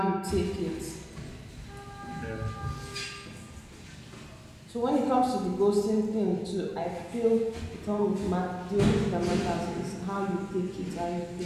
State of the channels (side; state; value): both; identical; correlation 1.00